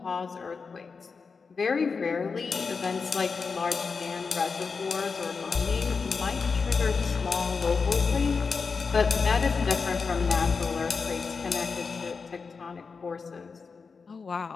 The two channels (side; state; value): right; quieter; 5.0 dB